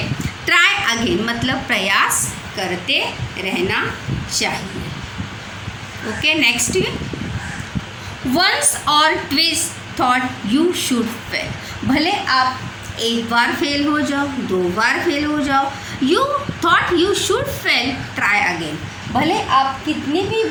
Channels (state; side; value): identical; both; correlation 1.00